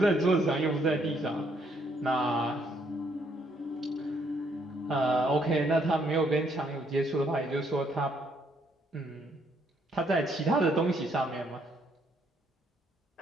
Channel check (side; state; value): both; normal; correlation 0.70